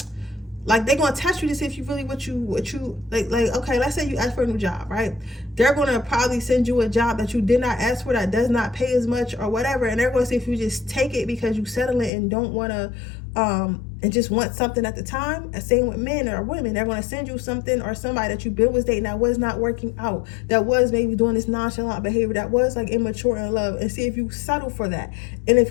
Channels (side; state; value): right; drops out; at 12.1 s